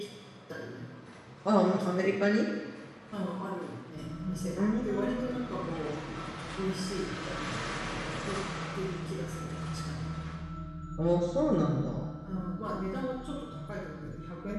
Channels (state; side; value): identical; both; correlation 1.00